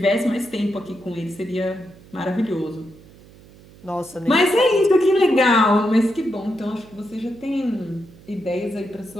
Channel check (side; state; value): right; noise; hum, 23 dB below the sound